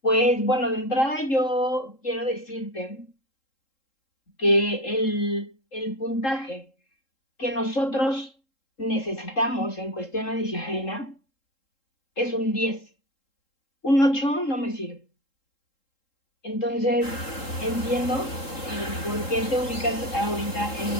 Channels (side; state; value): right; late; 3.7 ms